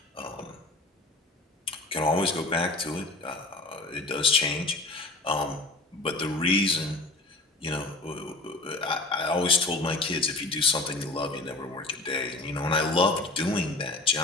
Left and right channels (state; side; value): quieter; right; 3.0 dB